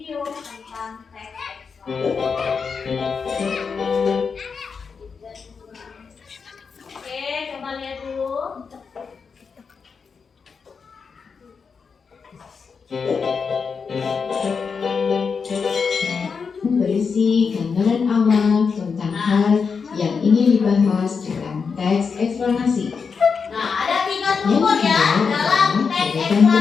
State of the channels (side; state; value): right; quieter; 5.6 dB